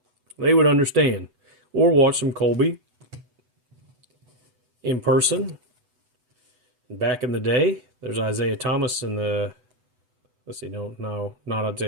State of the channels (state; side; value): late; left; 8.0 ms